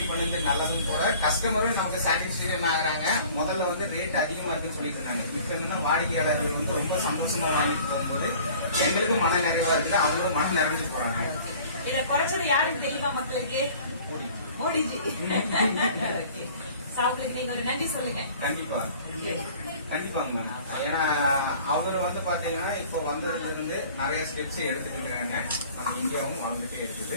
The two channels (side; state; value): both; inverted; correlation -0.48